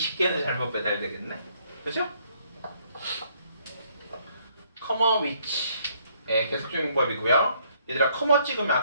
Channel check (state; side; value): inverted; both; correlation -0.67